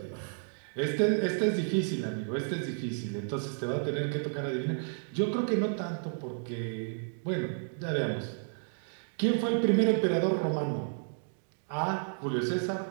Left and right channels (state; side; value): silent; left; digital silence